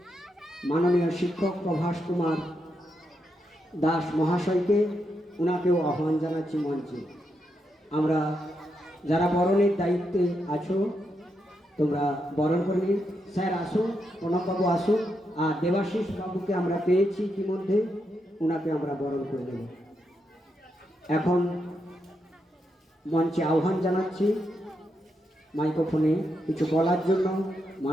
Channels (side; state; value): both; normal; correlation 0.83